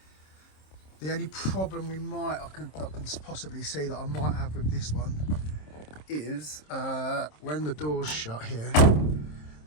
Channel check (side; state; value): right; late; 26 ms